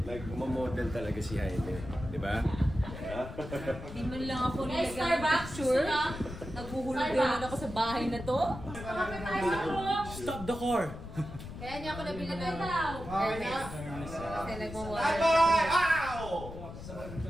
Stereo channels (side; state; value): left; noise; rumble, 11 dB below the sound